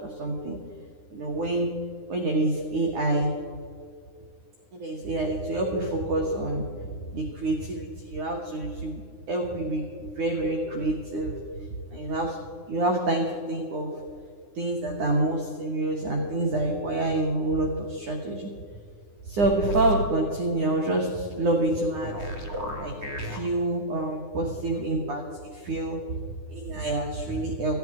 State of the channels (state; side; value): late; left; 9.8 ms